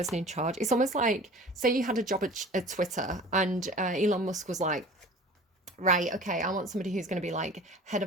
in charge. It's almost like, say you had a job at Twitter, and Elon Musk was like, right, okay, I want somebody who's going to be like head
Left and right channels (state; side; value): normal; both; correlation 0.42